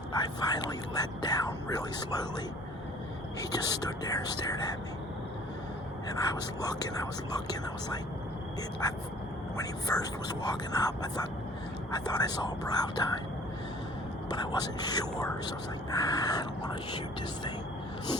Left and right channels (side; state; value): both; normal; correlation 0.52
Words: I finally let down really slowly. He just stood there and stared at me. And I was looking, I was like, when he first was walking up, I thought I saw a brow tine, but I wasn't sure, so I was like, I don't want to shoot this thing.